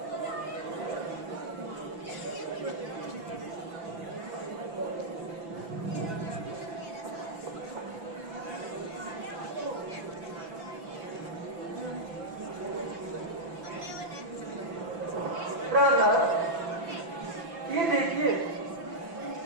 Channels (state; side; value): late; left; 5.9 ms